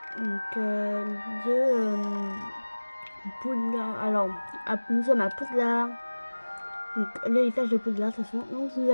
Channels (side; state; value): both; inverted; correlation -1.00